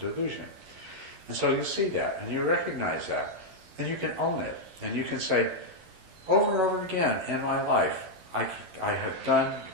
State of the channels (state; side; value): late; left; 11 ms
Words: And so you see that, and you recognize that, and you can own it, and you can say, over and over again in my life, I have done